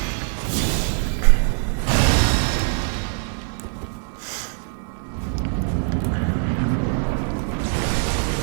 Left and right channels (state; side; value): silent; left; 58 dB below the other